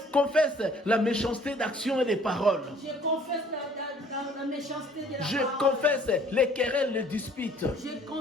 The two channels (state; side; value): normal; both; correlation 0.56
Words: confesse la méchanceté d'action et des paroles. Je confesse la méchanceté de la Je parole. confesse les querelles, les disputes. Je